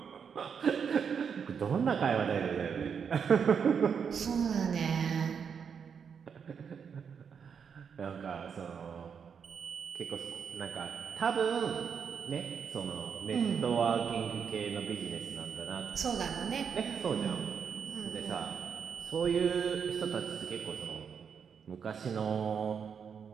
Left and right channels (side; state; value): left; quieter; 6.8 dB